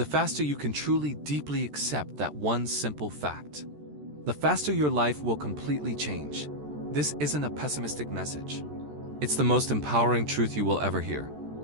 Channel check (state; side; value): late; left; 14 ms